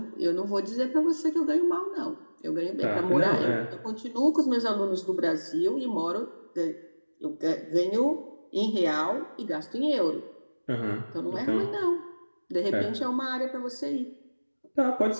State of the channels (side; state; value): both; inverted; correlation -1.00